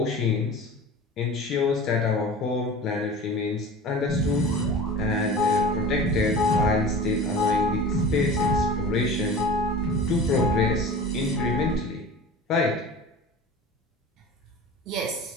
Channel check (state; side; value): normal; both; correlation 0.37